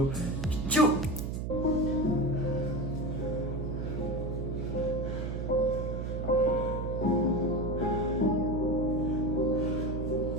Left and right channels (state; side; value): noise; right; hum, 3 dB below the sound